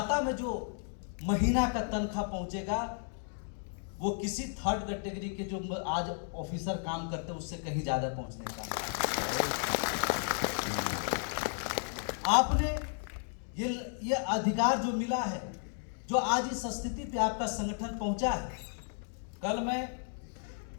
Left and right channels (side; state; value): right; silent; 55 dB below the other